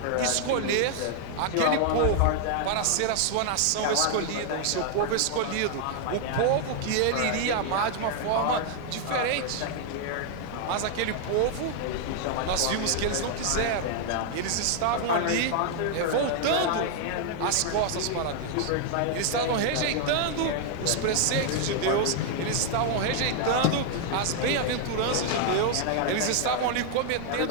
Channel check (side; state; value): both; different; correlation 0.00